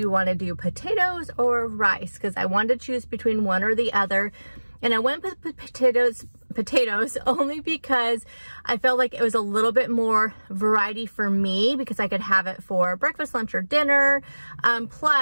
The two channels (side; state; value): both; inverted; correlation -1.00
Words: want to do potatoes or rice? Because I wanted to choose between one or the other. And I went with potatoes only because I felt like it was a little bit more variety for me because I could have it for breakfast, lunch, or dinner.